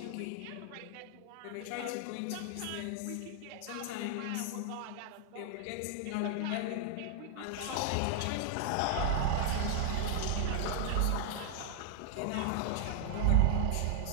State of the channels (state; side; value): different; both; correlation -0.01